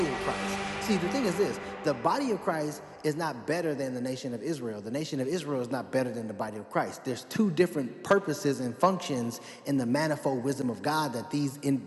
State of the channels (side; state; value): both; identical; correlation 1.00